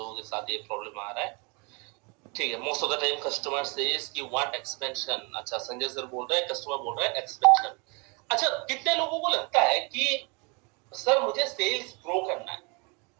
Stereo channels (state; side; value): quieter; left; 31.4 dB